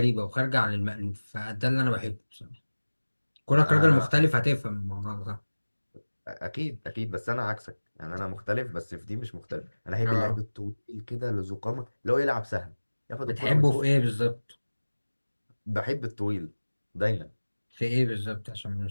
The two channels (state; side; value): inverted; both; correlation -1.00